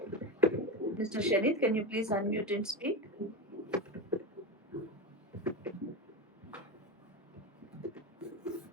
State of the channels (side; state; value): both; normal; correlation 0.17